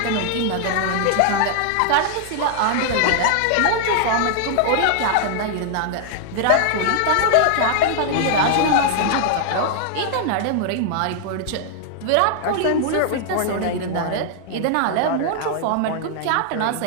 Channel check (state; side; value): different; both; correlation 0.00